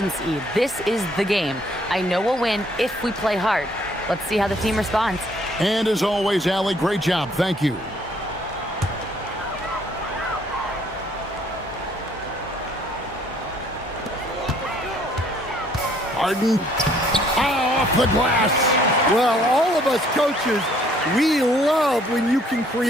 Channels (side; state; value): both; normal; correlation 0.63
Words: This is the game. I know we'll win if we play hard. Let's see how the team responds. And as always, Allie, great job. Thank you. Harden. Off the glass. Well, all of us coaches, we love when you can